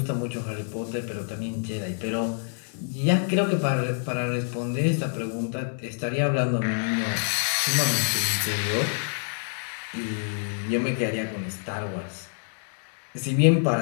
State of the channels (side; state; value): right; silent; digital silence